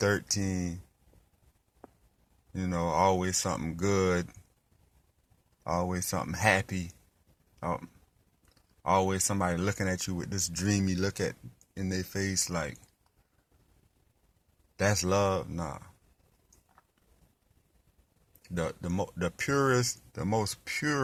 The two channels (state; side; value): identical; both; correlation 1.00